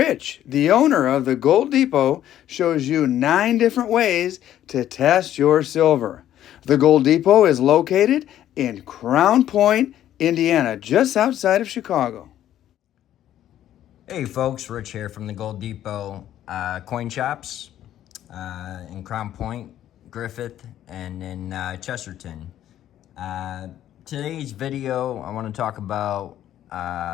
the owner of the Gold Depot, shows you 9 different ways to test your silver. The Gold Depot is located in Crown Point, Indiana, just outside of Chicago. Hey folks, Rich here from the Gold Depot coin shops in Crown Point, Griffith, and in Chesterton. Today's video, I want to talk about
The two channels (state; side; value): quieter; right; 11.8 dB